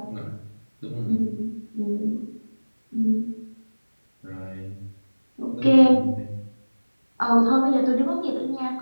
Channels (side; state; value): both; inverted; correlation -1.00